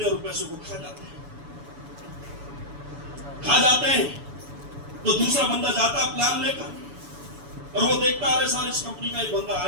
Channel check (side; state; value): left; late; 7.0 ms